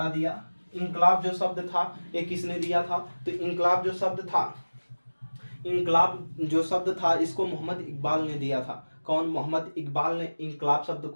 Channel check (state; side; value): inverted; both; correlation -1.00